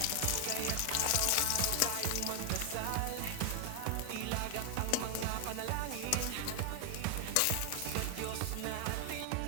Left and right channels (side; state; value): both; different; correlation 0.00